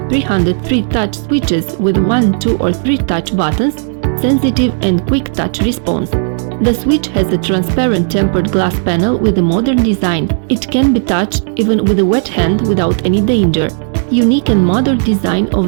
touch switches with 1, 2 or 3 touch buttons, sensitive and quick touch response. The switch has a transparent tempered glass panel with a modern design. It can be touched even with a wet hand without any danger. Unique and modern design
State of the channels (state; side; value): silent; left; digital silence